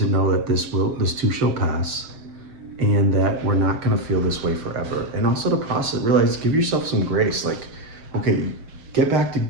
know that this too shall pass, and that we're not gonna feel this way forever. And also to process, realize, give yourself some grace. Like, okay, get back to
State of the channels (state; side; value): late; left; 6.7 ms